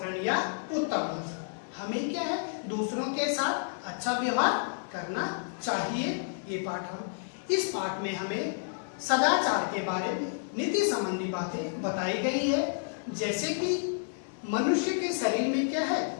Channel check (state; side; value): silent; right; digital silence